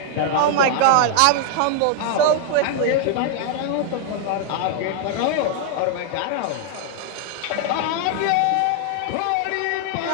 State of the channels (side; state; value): both; different; correlation 0.00